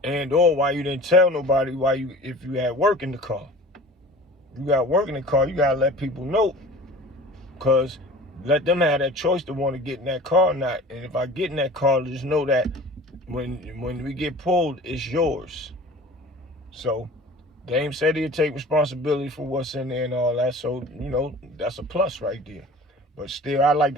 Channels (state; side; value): normal; both; correlation 0.41